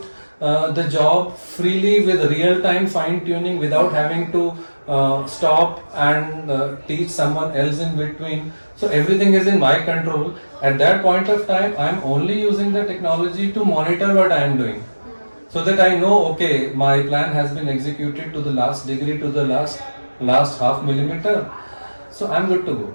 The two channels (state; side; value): inverted; both; correlation -1.00